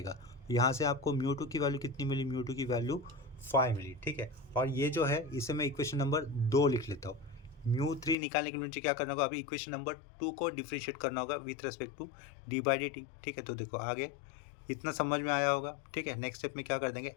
यहाँ से आपको μ2 की वैल्यू कितनी मिली, μ2 की वैल्यू 5 मिली, ठीक है। और ये जो है इसे मैं इक्वेशन नंबर 2 लिख लेता हूँ। μ3 निकालने के लिए मुझे क्या करना होगा, अभी इक्वेशन नंबर 2 को डिफरेंशिएट करना होगा विथ रेस्पेक्ट टू d/dt, ठीक है। तो देखो आगे इतना समझ में आया होगा, ठीक है। नेक्स्ट स्टेप में क्या कर देंगे,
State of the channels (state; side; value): drops out; right; at 8.2 s